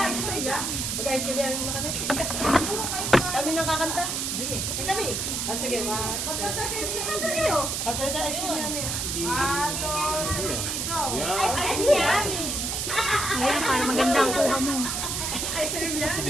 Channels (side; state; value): right; noise; hiss, 1 dB below the sound